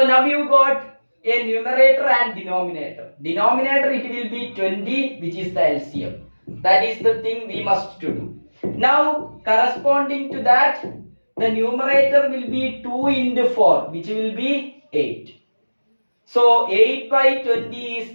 now you got a numerator and denominator. Denominator, it will be 20, which is the LCM. That is the thing we must to do. Now corresponding to that, the numerator will be 2 into 4, which will be 8. So 8 by 20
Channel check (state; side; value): inverted; both; correlation -1.00